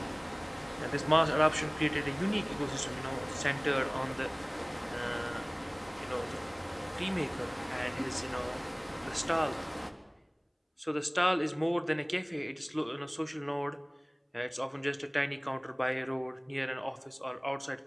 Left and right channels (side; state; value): both; identical; correlation 1.00